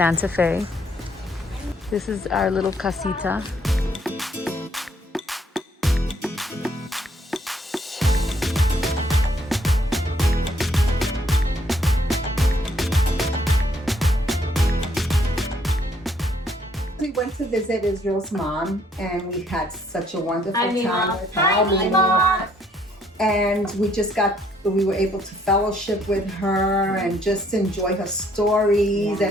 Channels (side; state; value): both; normal; correlation 0.66